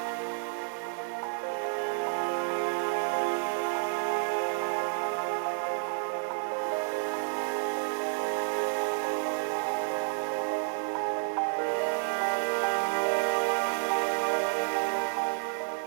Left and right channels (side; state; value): left; silent; 56 dB below the other